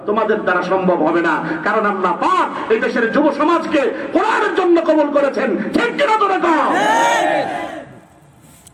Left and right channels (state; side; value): identical; both; correlation 1.00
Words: তোমাদের দ্বারা সম্ভব হবে না। কারণ আল্লাহ পাক এই দেশের যুব সমাজকে কোরআনের জন্য কবুল করেছেন। ঠিক কিনা তোরা কও?